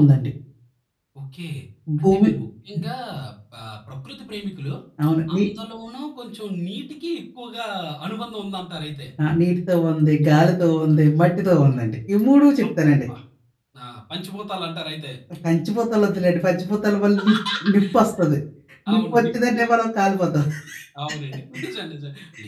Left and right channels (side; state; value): both; identical; correlation 1.00